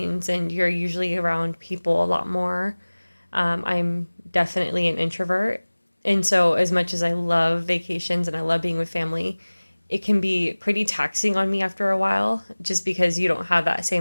and you're usually around people a lot more. I'm definitely an introvert. And so, as much as I love vacations and I love being with family, it can be pretty taxing on me after a while just because you don't have that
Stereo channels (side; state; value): both; inverted; correlation -1.00